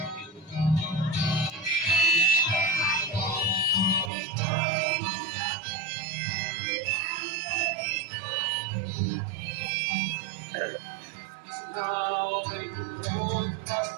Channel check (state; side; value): drops out; left; at 4.1 s